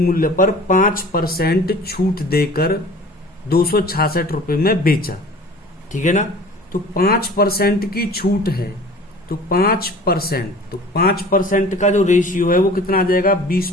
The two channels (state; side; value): normal; both; correlation 0.44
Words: पर 5% छूट देकर 266 रुपए में बेचा, ठीक है ना। तो 5% की छूट है, तो 5% का जो रेशियो है वो कितना आ जाएगा